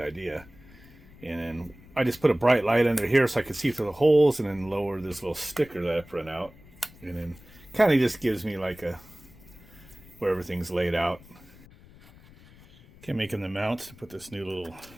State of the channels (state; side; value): noise; left; rumble, 23 dB below the sound